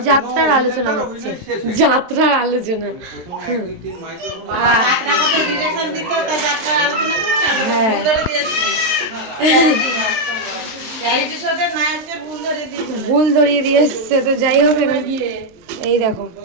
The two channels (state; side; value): late; left; 23 ms